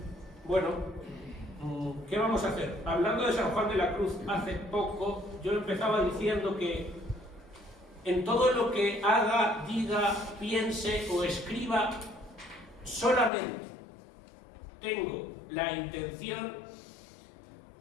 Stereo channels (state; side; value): drops out; right; at 13.3 s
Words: bueno, ¿qué vamos a hacer? Hablando de San Juan de la Cruz hace poco, yo empezaba diciendo que en todo lo que haga, diga, piense o escriba, solamente tengo la intención,